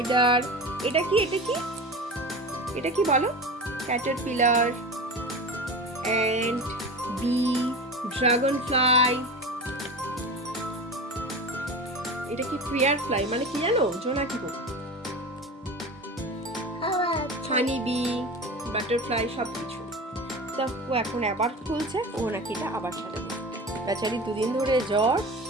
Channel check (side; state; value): both; normal; correlation 0.30